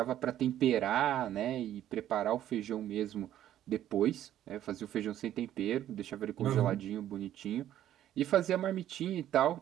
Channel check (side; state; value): left; quieter; 12.0 dB